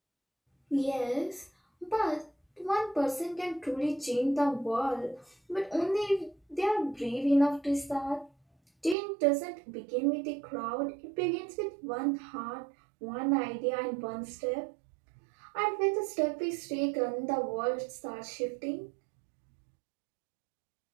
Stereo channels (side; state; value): left; drops out; at 9.0 s